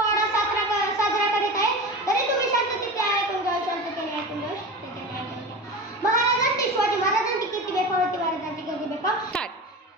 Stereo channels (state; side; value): normal; both; correlation 0.29